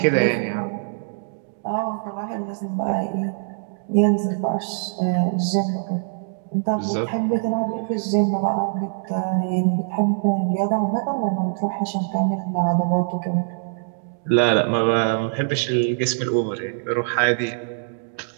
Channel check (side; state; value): left; silent; digital silence